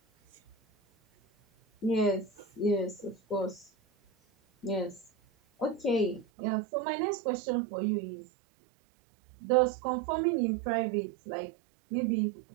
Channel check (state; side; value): drops out; left; at 6.2 s